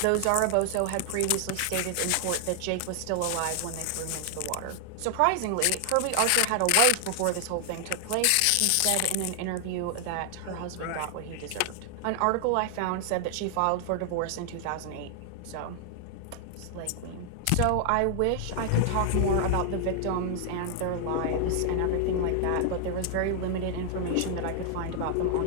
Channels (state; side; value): different; both; correlation 0.00